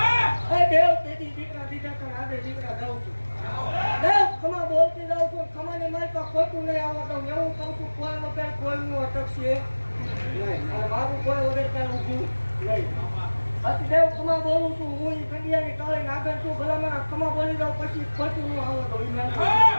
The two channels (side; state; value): both; inverted; correlation -1.00